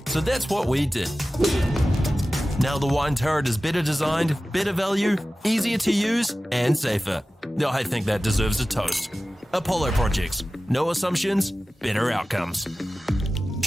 So that's what we did. Now the wine turret is better designed, better value, easier to use, and safer. I think that deserves a toast. Apollo Projects. No assumptions, better outcomes.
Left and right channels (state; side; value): normal; both; correlation 0.96